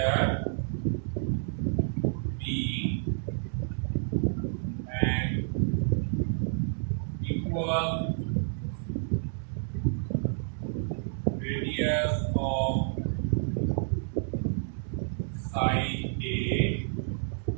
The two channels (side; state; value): left; silent; 58 dB below the other